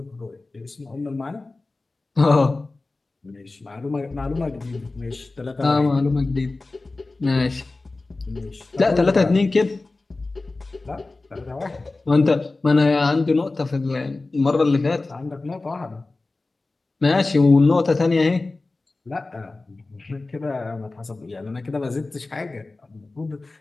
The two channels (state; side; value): quieter; right; 3.3 dB